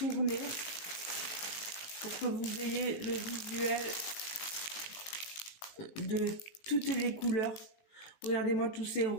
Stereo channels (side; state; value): right; late; 18 ms